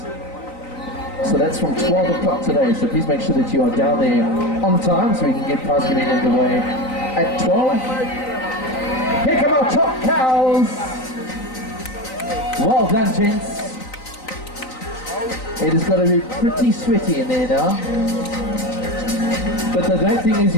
So that's from 12 o'clock today. So please make sure that you are down there on time so we can get prize giving underway at 12. Here come our top cows. Well done, gents. It has got to be pretty sweaty in there now. But the great thing is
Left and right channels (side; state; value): right; late; 3.9 ms